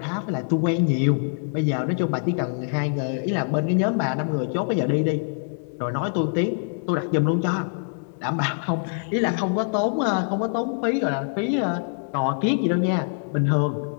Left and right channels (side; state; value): right; silent; 62 dB below the other